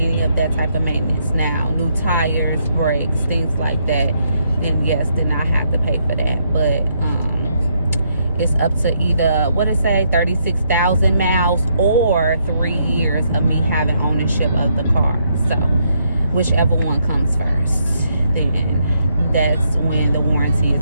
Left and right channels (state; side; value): inverted; both; correlation -0.75